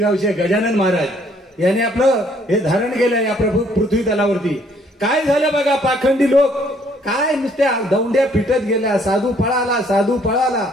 गजानन महाराज यांनी आपलं हे धारण केलं या पृथ्वी तलावरती. काय झालं बघा, पाखंडी लोक काय नुसत्या दौंड्या पिटत गेल्या, साधू पळाला, साधू पळाला.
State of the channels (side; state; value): both; normal; correlation 0.64